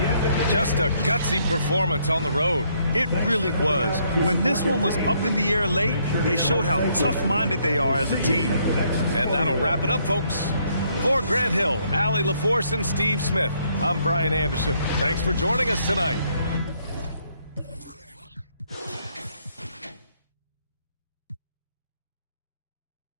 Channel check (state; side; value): inverted; both; correlation -0.70